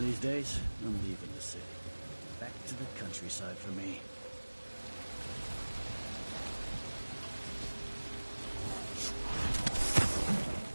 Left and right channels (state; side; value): inverted; both; correlation -1.00